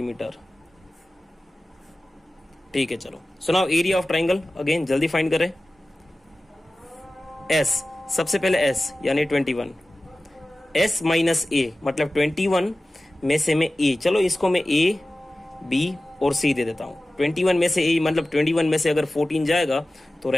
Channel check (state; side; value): normal; both; correlation 0.96